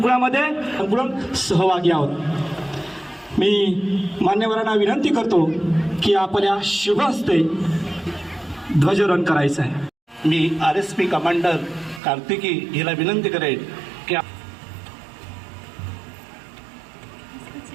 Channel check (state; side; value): drops out; left; at 12.0 s